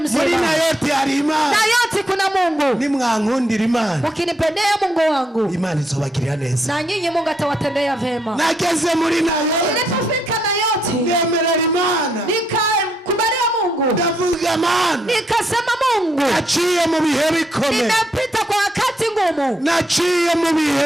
muri na yote hari Imana, na yote kuna Mungu. Nimwankundira Imana, ukinipendea Mungu wangu, Imana izobagirira neza, na nyinyi Mungu atawatendea vema. Nageze muri na yote, nilipofika na yote, ngemerera Imana, nikakubalia Mungu, ndavuga Imana, nikasema Mungu, naciye mu bihe bikomeye, nimepita kwa wakati ngumu, naciye mu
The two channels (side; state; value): both; normal; correlation 0.76